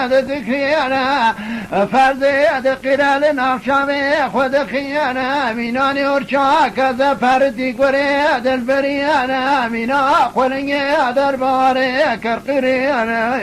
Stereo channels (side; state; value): both; identical; correlation 1.00